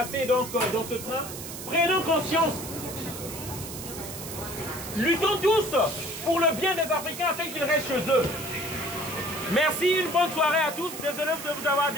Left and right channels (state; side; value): noise; right; hiss, 10 dB below the sound